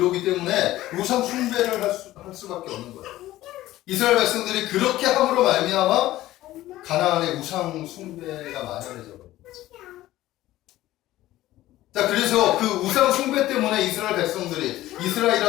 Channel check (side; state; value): right; quieter; 15.6 dB